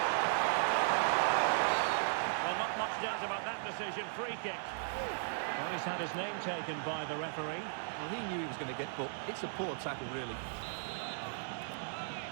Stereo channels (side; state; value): left; silent; digital silence